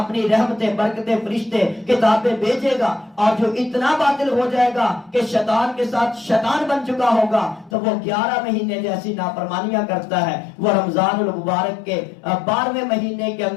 اپنی رحمتیں برکتیں فرشتے کتابیں بھیجے گا، اور جو اتنا باطل ہو جائے گا کہ شیطان کے ساتھ شیطان بن چکا ہوگا تو وہ 11 مہینے جیسی نافرمانیاں کرتا ہے، وہ رمضان المبارک کے 12ویں مہینے کے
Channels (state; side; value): drops out; right; at 7.7 s